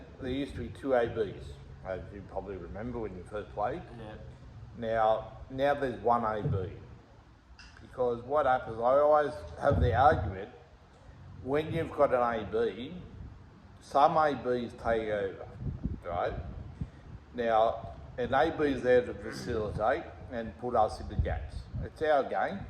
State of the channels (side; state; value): both; identical; correlation 1.00